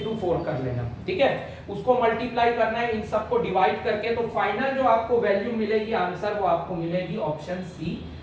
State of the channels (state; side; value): identical; both; correlation 1.00